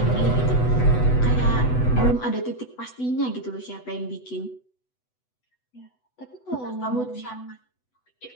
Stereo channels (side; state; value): right; late; 8.0 ms